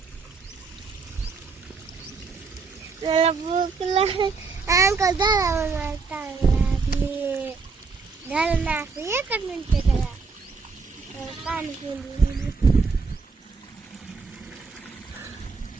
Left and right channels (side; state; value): left; quieter; 4.7 dB